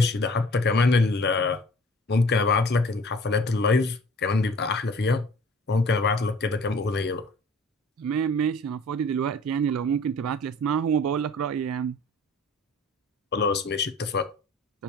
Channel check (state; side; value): normal; both; correlation 0.48